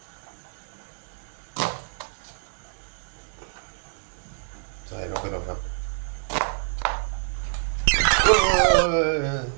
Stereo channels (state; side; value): silent; left; 60 dB below the other